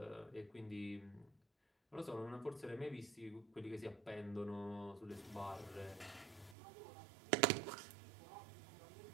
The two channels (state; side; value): drops out; left; at 6.6 s